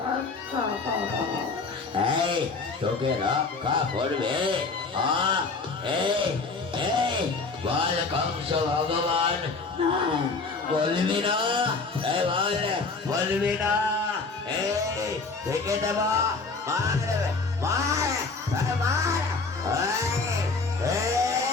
করো। এই তোকে রক্ষা করবে? এই এই বল কংস ভগবান, বলবি না? এই বল, বলবি না? এই থেকে দেব, মার মার মার।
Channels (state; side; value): quieter; right; 4.1 dB